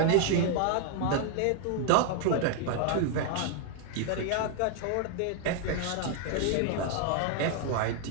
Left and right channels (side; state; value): both; different; correlation 0.00